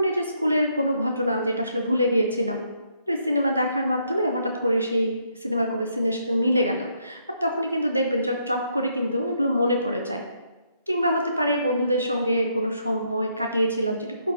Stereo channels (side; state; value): both; inverted; correlation -0.73